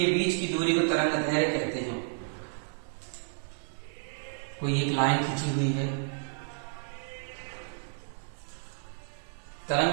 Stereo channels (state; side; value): silent; left; digital silence